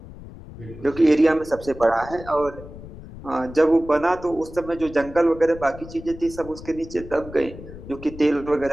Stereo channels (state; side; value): noise; left; rumble, 15 dB below the sound